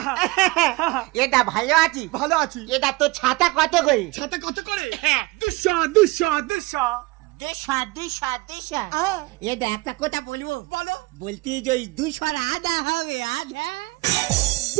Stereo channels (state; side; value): quieter; left; 22.9 dB